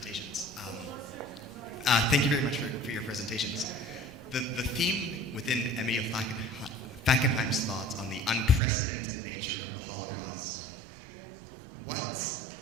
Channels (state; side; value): drops out; left; at 8.6 s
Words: Thank you very much for your presentations. The theme within Emil Fackenheim's thoughts on the unprecedented nature of the Holocaust, what